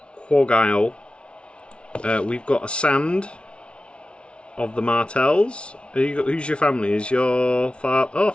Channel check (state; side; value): late; right; 0.059 ms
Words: Quagile. We've got a Sand of the Martells. Who's your family? Is your father? Oh,